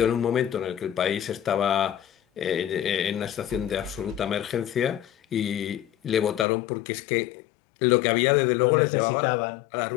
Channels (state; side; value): drops out; right; at 6.5 s